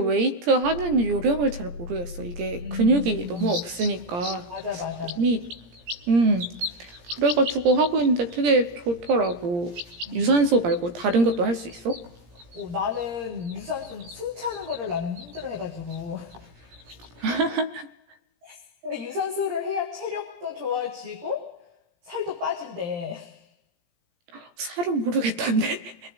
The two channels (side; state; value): left; late; 17 ms